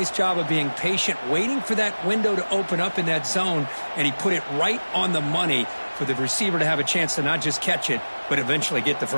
job of being patient, waiting for that window to open up in that zone, and he put it right on the money for the receiver to have a chance to not just catch it, but eventually get the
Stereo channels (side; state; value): both; inverted; correlation -1.00